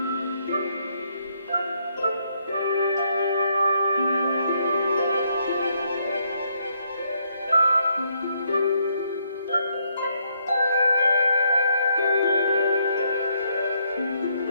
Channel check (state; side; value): inverted; both; correlation -0.73